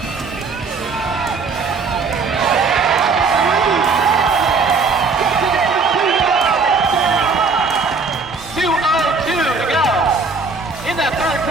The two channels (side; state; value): left; quieter; 4.5 dB